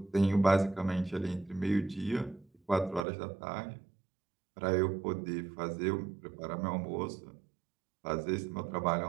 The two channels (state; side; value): drops out; left; at 3.1 s